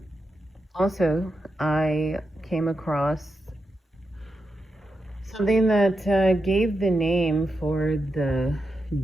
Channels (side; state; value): both; normal; correlation 0.87